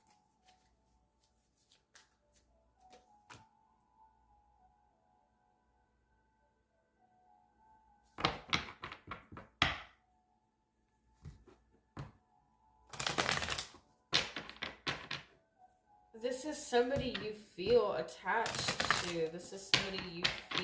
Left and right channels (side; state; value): both; identical; correlation 1.00